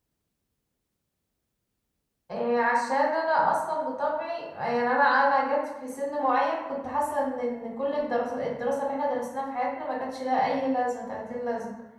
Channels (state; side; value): identical; both; correlation 1.00